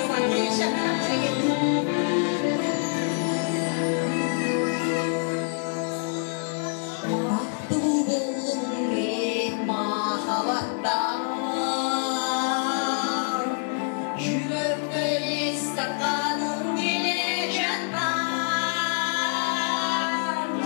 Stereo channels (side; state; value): right; silent; 61 dB below the other